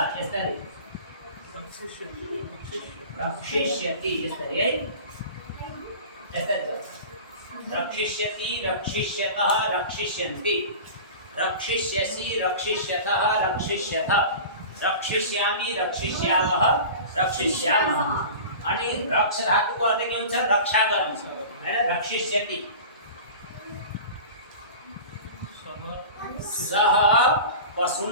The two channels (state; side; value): inverted; both; correlation -0.36